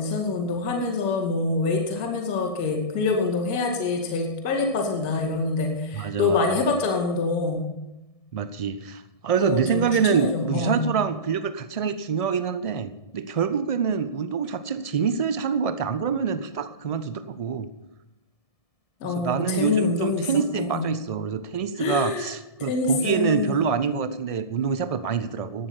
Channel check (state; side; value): late; right; 1.6 ms